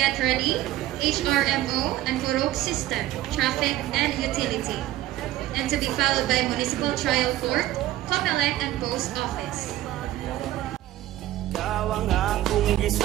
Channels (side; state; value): left; quieter; 14.8 dB